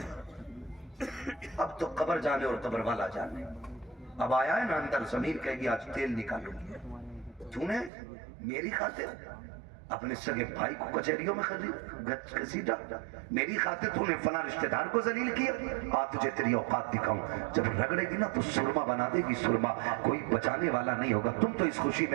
اب تو قبر جانے اور قبر والا جانے۔ اب آیا ہے نا اندر ضمیر کہے گی آج تیل نکالوں گی، تو نے میری خاطر اپنے سگے بھائی کو کچہریوں میں گھسیٹا، میری خاطر تو نے فلاں رشتہ دار کو ذلیل کیا، آ تجھے تیری اوقات دکھاؤں، جب رگڑے گی نا تو سرما بنا دے گی، سرما کوئی بچانے والا نہیں ہوگا۔ تم تو اس خوشی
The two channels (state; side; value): drops out; left; at 7.9 s